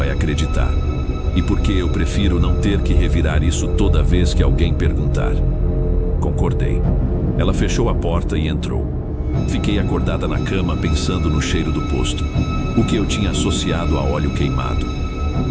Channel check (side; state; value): both; identical; correlation 1.00